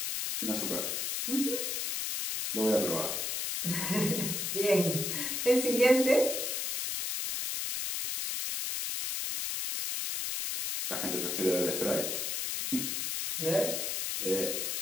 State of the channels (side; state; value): left; noise; hiss, 1 dB below the sound